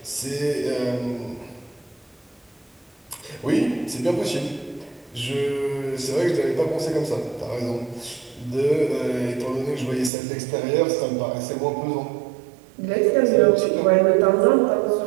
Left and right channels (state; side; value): drops out; left; at 10.1 s